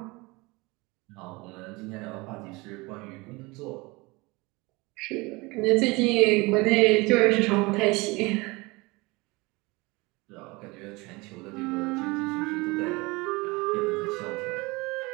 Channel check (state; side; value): quieter; left; 24.3 dB